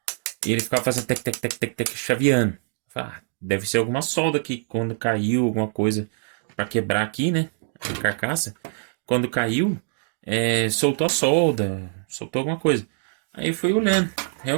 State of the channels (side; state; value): left; silent; digital silence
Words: E ele ficava fazendo tec, tec, tec, tec, tec, chaveando. Deve ser alguma solda que quando caiu, alguma coisa para quebrar aqui, né? A carcaça. Quando caiu, soltou a solda, soltou alguma coisa. Aí eu fui olhando.